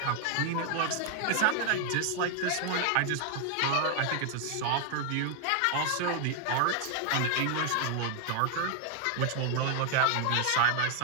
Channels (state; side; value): different; both; correlation 0.00